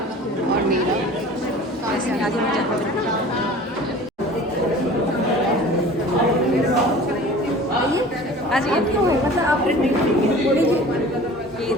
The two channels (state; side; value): normal; both; correlation 0.43